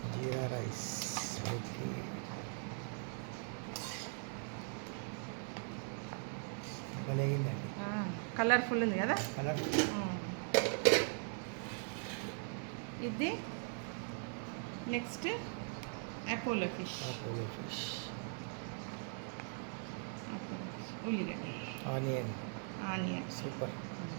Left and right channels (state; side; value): silent; left; 51 dB below the other